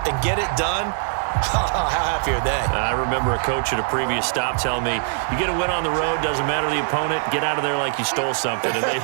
and get it done, how happy are they? I remember a coach at a previous stop telling me, you get a win on the road, doesn't matter the opponent, get out of there like you stole something, and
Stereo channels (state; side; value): silent; left; digital silence